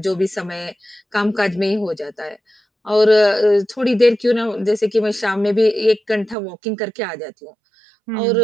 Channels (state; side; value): drops out; left; at 6.4 s